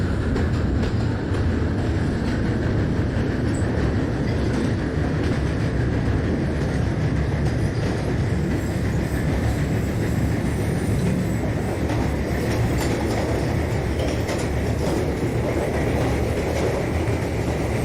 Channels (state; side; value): identical; both; correlation 1.00